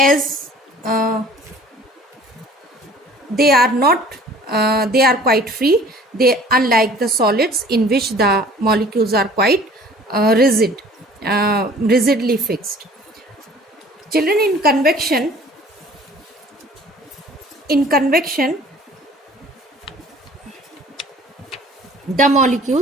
they are not they are quite free. They, unlike the solids in which the molecules are quite rigidly fixed. Children, in convection the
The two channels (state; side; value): normal; both; correlation 0.50